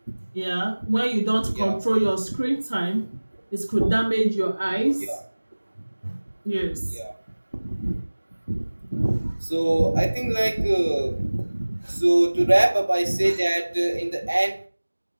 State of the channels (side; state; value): both; inverted; correlation -1.00